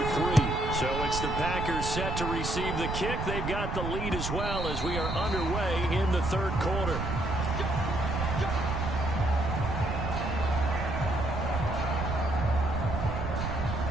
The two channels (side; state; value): right; noise; rumble, 3 dB below the sound